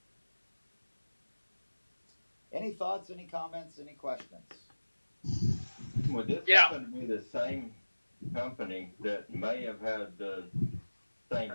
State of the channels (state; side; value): inverted; both; correlation -1.00